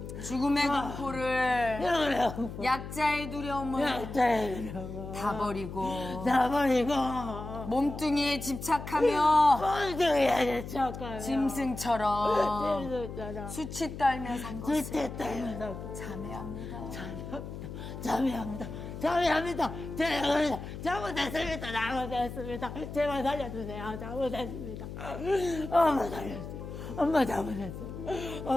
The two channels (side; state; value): left; noise; hum, 9 dB below the sound